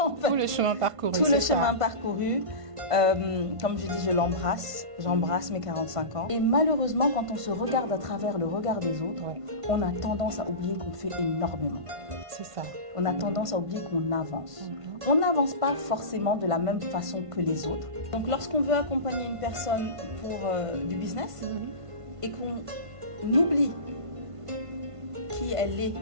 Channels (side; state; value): left; late; 1.5 ms